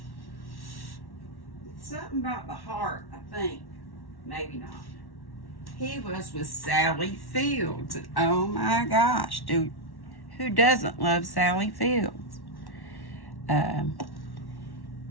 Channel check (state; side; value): late; right; 1.1 ms